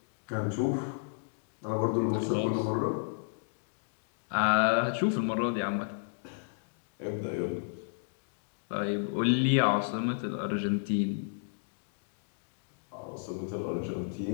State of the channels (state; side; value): silent; right; digital silence